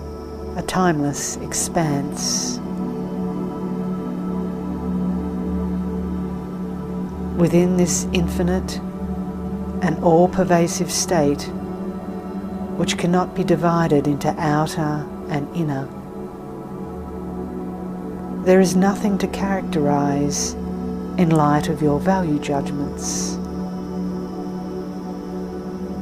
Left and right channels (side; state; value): both; identical; correlation 1.00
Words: a timeless expanse. Within this infinite and all-pervasive state, which cannot be divided into outer and inner, there is nothing to characterize in light of your value judgments.